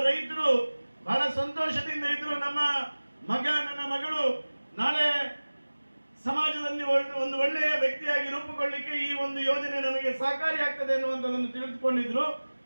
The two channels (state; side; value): inverted; both; correlation -1.00